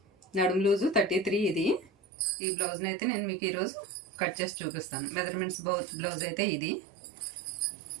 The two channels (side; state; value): left; drops out; at 1.9 s